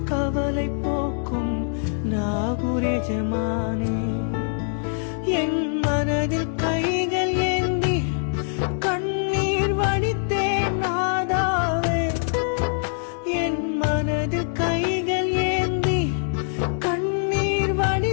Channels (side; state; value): right; silent; digital silence